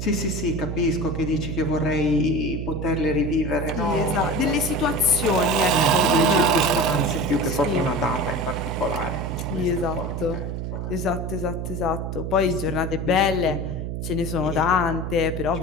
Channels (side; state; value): right; noise; hum, 4 dB below the sound